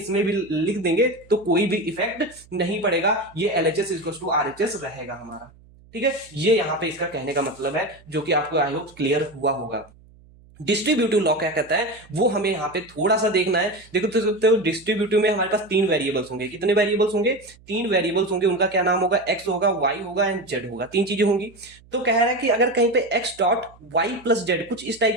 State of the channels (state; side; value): noise; right; hum, 26 dB below the sound